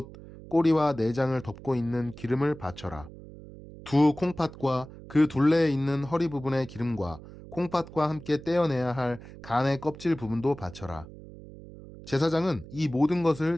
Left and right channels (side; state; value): right; noise; hum, 16 dB below the sound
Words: 꼬리와 내장을 덮고 있는 기름을 바쳐라. 두 콩팥과 그 둘레에 있는 허리 부분의 기름과 콩팥과 함께 떼어내야 할 간의 껍질 부분도 바쳐라. 제사장은 이 모든 것을